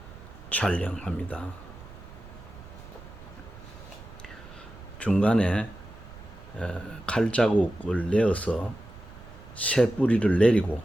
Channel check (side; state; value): right; noise; rumble, 17 dB below the sound